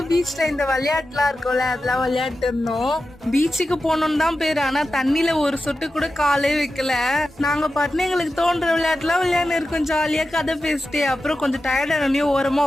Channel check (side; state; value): both; normal; correlation 0.91